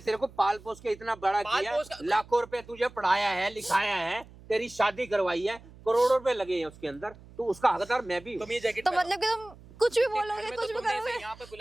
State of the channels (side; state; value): right; noise; hum, 21 dB below the sound